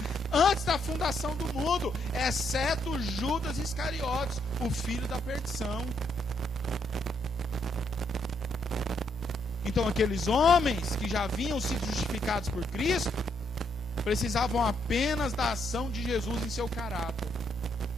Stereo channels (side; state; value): both; normal; correlation 0.75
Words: antes da fundação do mundo, exceto Judas Iscariotes, o filho da perdição. Então aqueles homens que já haviam sido justificados por Cristo precisavam apenas da ação de Jesus em seu caráter.